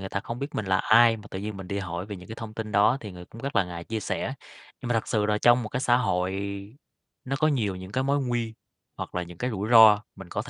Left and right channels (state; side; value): identical; both; correlation 1.00